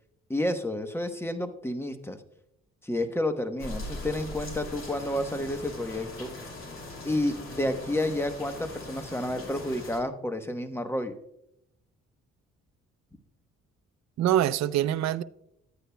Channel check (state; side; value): normal; both; correlation 0.59